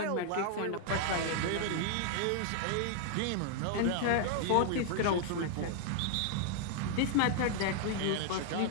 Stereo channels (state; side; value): different; both; correlation 0.00